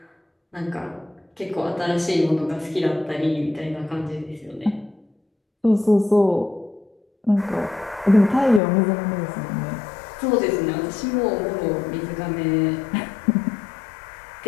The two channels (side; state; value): right; drops out; at 8.6 s